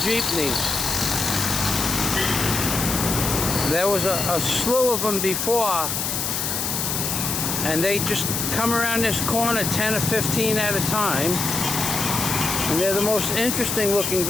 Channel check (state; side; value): noise; left; hiss, 1 dB below the sound